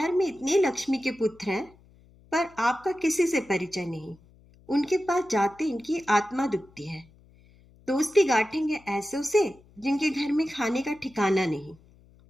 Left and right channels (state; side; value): noise; left; hum, 27 dB below the sound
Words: में इतने लक्ष्मी के पुत्र हैं, पर आपका किसी से परिचय नहीं। उनके पास जाते इनकी आत्मा दुखती है। दोस्ती गांठेंगे ऐसों से जिनके घर में खाने का ठिकाना नहीं।